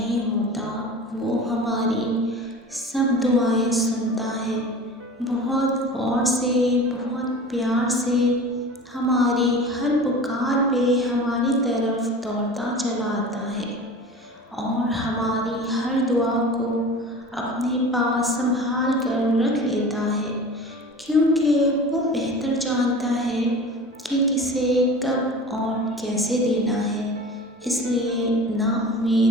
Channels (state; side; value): normal; both; correlation 0.37